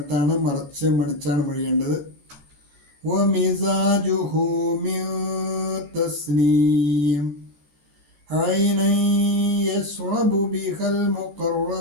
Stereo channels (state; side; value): late; left; 13 ms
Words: മണിച്ചാണ് മൊഴിയേണ്ടത്. ومزاجه من تسنيم عينا يشرب بها